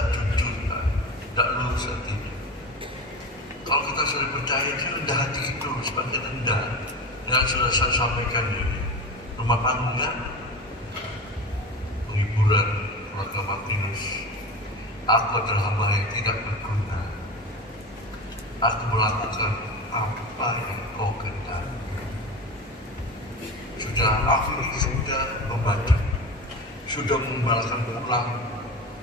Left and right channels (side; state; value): both; normal; correlation 0.29